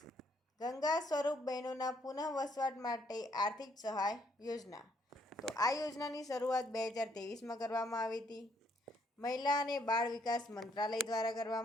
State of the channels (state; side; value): normal; both; correlation 0.69